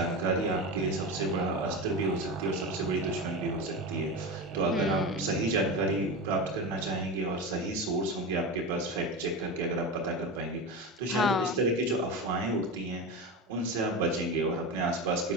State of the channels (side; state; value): both; normal; correlation 0.22